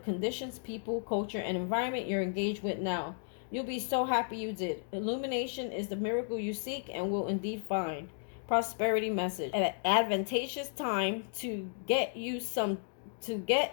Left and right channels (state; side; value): silent; right; digital silence